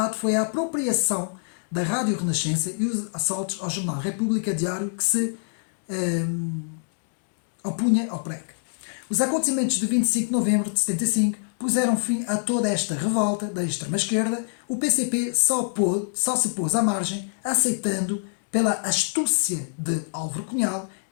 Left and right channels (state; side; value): silent; right; digital silence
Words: foi a apropriação da Rádio Renascença e os assaltos ao jornal República Diário, que se opunha ao PREC. Os acontecimentos de 25 de novembro de 75 puseram fim a toda esta revolta da extrema-esquerda. O PCP só se pôs à margem, aceitando pela astúcia de Álvaro Cunhal